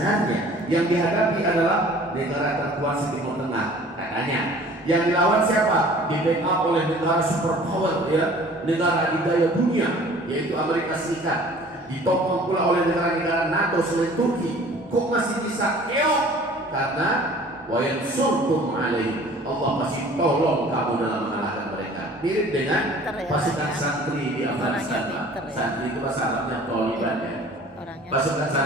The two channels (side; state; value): both; normal; correlation 0.49